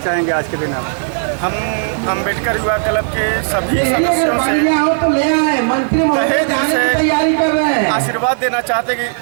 आज के दिन आप? हम अम्बेडकर युवा क्लब के सभी अगर सदस्यों बन से गया हो तो ले आए, मंत्री महोदय तहे दिल जाने से की तैयारी कर रहे हैं। आशीर्वाद देना चाहते कि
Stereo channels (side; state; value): left; silent; digital silence